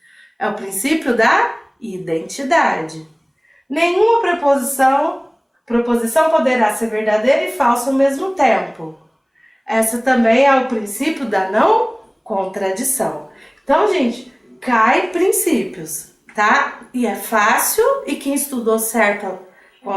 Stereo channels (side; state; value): both; identical; correlation 1.00